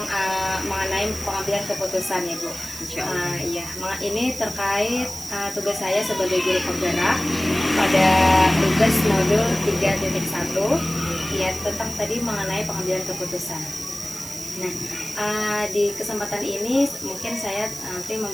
mengenai pengambilan keputusan ya Bu. Iya, ini terkait tugas saya sebagai guru penggerak pada tugas modul 3.1 ya, tentang tadi mengenai pengambilan keputusan. Nah, di kesempatan ini mungkin saya nanti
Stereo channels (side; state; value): right; noise; hiss, 11 dB below the sound